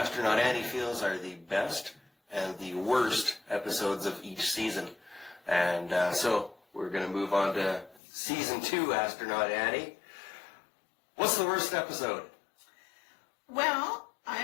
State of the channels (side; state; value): right; drops out; at 8.0 s